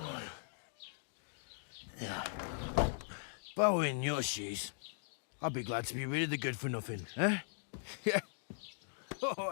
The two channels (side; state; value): right; silent; digital silence